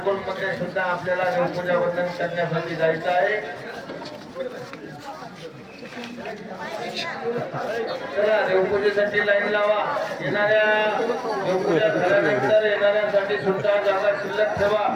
सुद्धा आपल्याला देवपूजा वंदन करण्यासाठी जायचं आहे. चला देवपूजेसाठी लाईन लावा. येणाऱ्या देवपूजा झाल्यानंतर येणाऱ्यांसाठी सुद्धा जागा शिल्लक ठेवा.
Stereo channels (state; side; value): identical; both; correlation 1.00